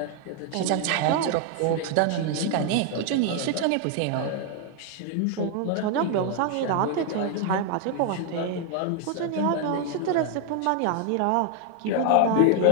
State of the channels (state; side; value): different; both; correlation 0.00